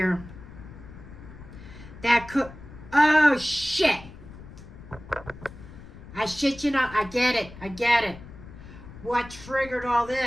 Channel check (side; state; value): left; noise; rumble, 16 dB below the sound